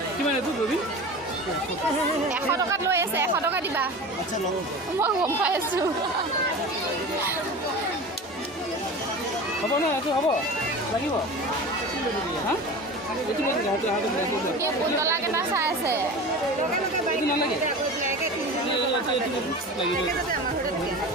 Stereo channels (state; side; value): normal; both; correlation 0.33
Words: কিমান এইটো ৰবি 100 টকাত লৈ আছে 100 টকা দিবা মই গম পাই আছোঁ হ'ব ন এইটো হ'ব লাগিব হা এইটো পুতলা কেইটা চাই আছে এইটো নালাগে